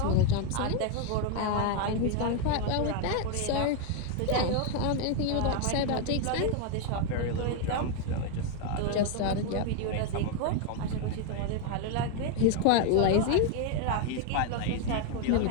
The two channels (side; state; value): both; different; correlation 0.01